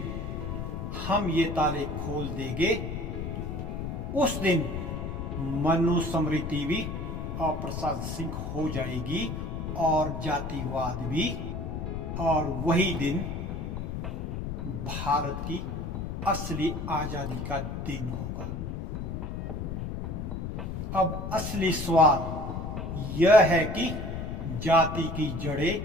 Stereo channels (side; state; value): left; noise; rumble, 4 dB below the sound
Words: हम ये ताले खोल देंगे, उस दिन मनुस्मृति भी अप्रासंगिक हो जाएगी और जातिवाद भी, और वही दिन भारत की असली आजादी का दिन होगा। अब असली सवाल यह है कि जाति की जड़ें